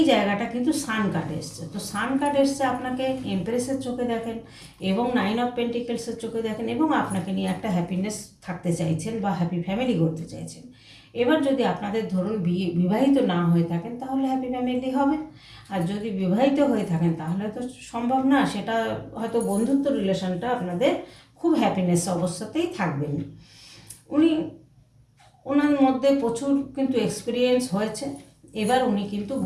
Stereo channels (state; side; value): identical; both; correlation 1.00